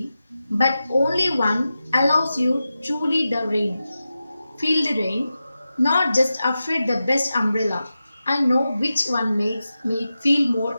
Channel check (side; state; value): both; inverted; correlation -0.92